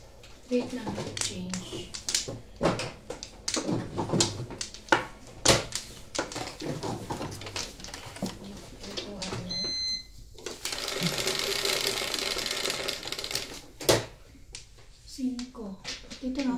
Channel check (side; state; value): both; identical; correlation 1.00